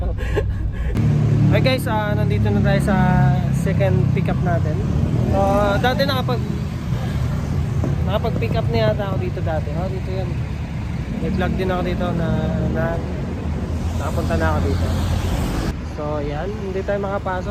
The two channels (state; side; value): identical; both; correlation 1.00